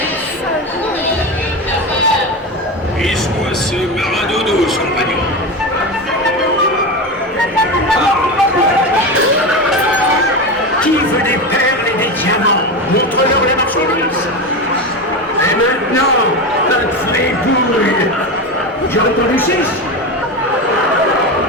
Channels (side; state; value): both; normal; correlation 0.20